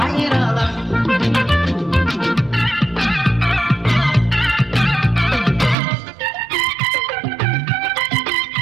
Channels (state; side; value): drops out; left; at 5.8 s